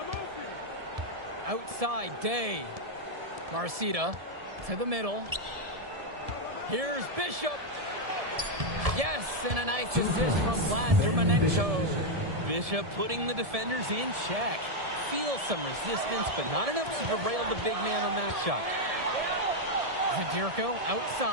Outside, Day. Marcita to the middle. Here's Bishop. Yes, and a nice assist from Vlad Dermonenko. Bishop putting the defenders in check. Feels some resistance, but not enough to derail the big man on that shot. Zadirko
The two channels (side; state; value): left; late; 1.7 ms